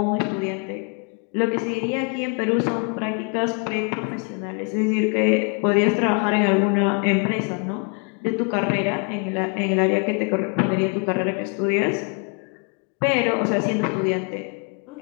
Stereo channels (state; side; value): quieter; right; 34.8 dB